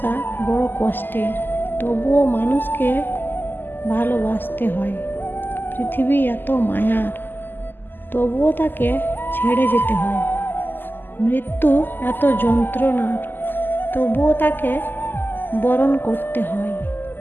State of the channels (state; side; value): late; right; 0.093 ms